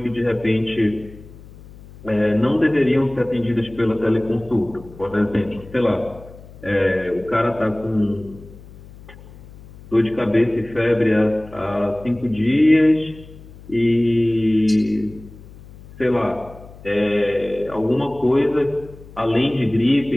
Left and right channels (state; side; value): noise; left; hum, 19 dB below the sound